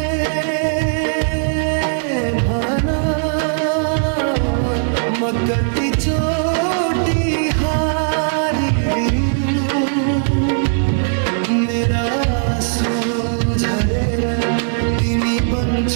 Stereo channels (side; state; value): left; silent; 57 dB below the other